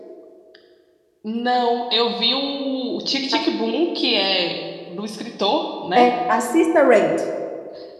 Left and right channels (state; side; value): identical; both; correlation 1.00